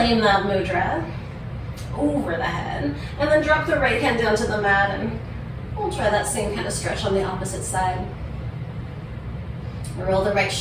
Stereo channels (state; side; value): identical; both; correlation 1.00